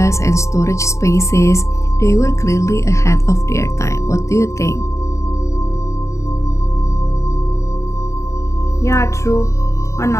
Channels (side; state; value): right; late; 0.14 ms